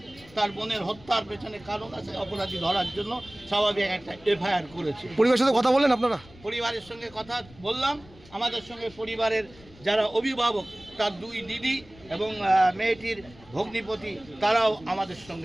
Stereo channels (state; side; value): noise; left; rumble, 23 dB below the sound